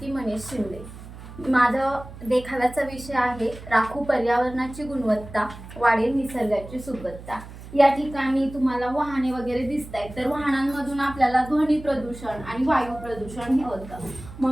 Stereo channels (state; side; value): noise; right; hum, 15 dB below the sound